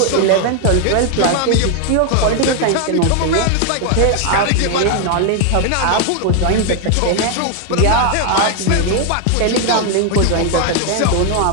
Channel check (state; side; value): different; both; correlation 0.00